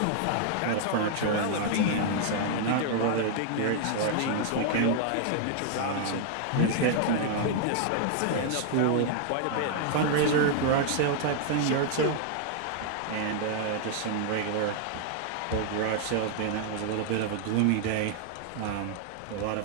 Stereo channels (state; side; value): different; both; correlation 0.00